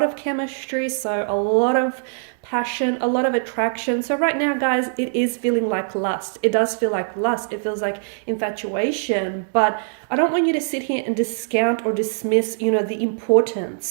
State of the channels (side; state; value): left; silent; digital silence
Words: of chemistry, so a lot of passion, a lot of attraction. So right now, guys, it is feeling like lust. It does feel like lust. It feels like infatuation. But I don't want you to sit here and discount or dismiss, you know, the